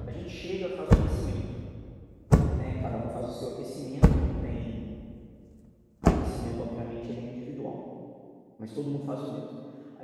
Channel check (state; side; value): identical; both; correlation 1.00